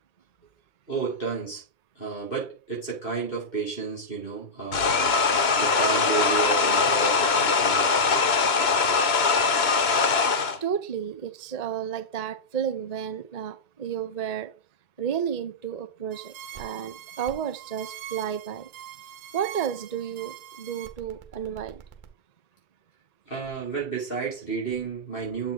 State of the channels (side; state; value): right; late; 2.2 ms